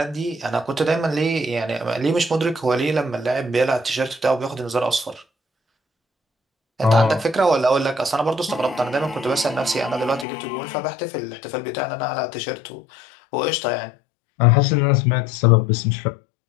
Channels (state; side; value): drops out; right; at 10.2 s